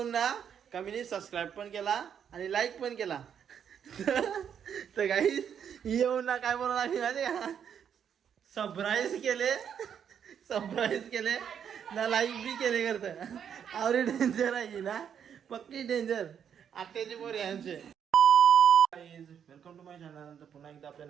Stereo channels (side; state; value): left; quieter; 8.2 dB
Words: ना का मी सबस्क्राईब पण केला आणि लाईक पण केला तर काही येऊन ना काय बोलणार आम्ही माहिती का सरप्राईज केले ना लाईक बी केले करतं आवरे डेंजर आहे ना पक्की डेंजर आत्याची पोर यांचे वेलकम टू माय चॅनल. तर पुन्हा एकदा आपल्या